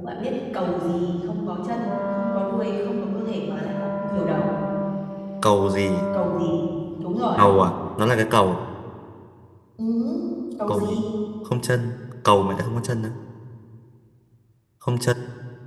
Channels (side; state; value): both; identical; correlation 1.00